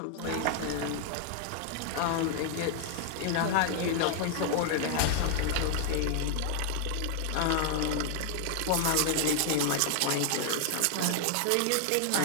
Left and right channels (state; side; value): different; both; correlation 0.00